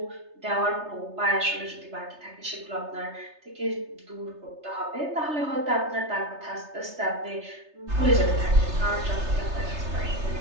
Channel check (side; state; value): left; late; 3.3 ms